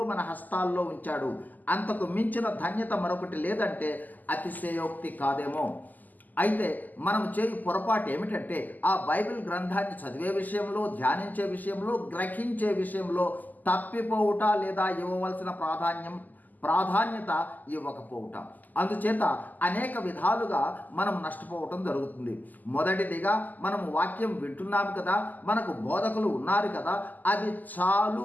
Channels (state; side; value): late; right; 0.083 ms